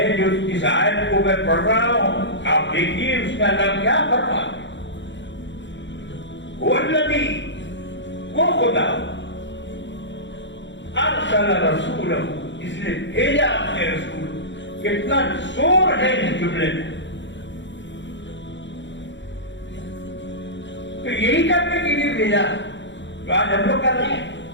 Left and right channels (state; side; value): late; right; 0.53 ms